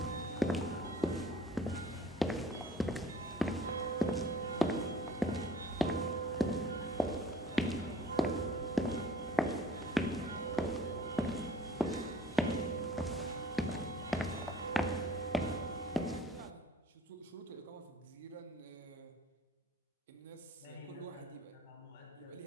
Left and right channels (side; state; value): both; normal; correlation 0.51